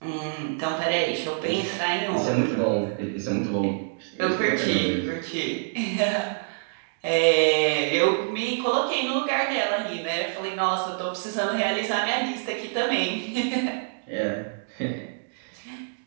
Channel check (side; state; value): left; silent; digital silence